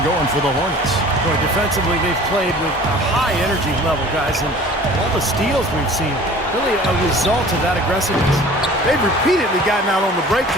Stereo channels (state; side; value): normal; both; correlation 0.46